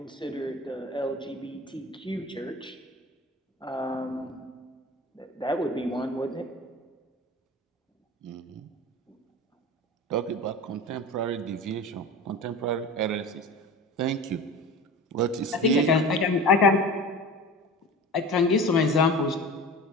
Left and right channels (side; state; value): both; normal; correlation 0.34